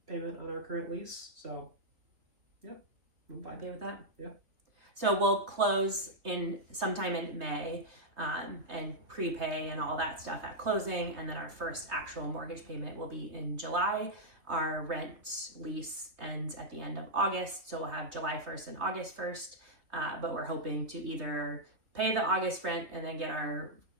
payment on our current lease. So, yep, I'm fine. Okay with that? Yeah. So we'll close in sometime in May, and prepay and all that stuff at closing, and then our first actual mortgage payment will be in July. Our rent lease ends at the end of August, so we'll have July 1st and August 1st, but we're hoping to either pay the August rent and then get our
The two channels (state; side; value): late; left; 3.2 ms